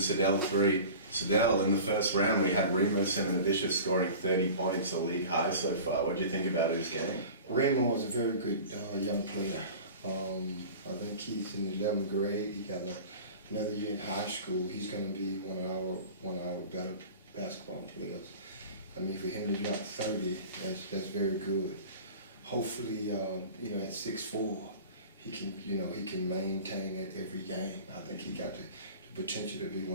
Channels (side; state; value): both; inverted; correlation -0.39